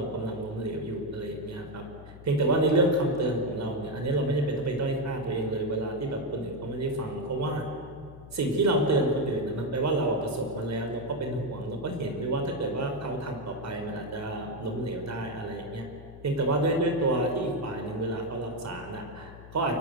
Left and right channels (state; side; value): noise; left; hum, 16 dB below the sound